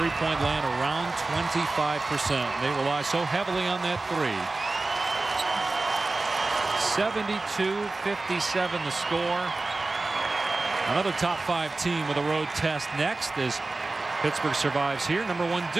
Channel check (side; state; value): left; quieter; 3.3 dB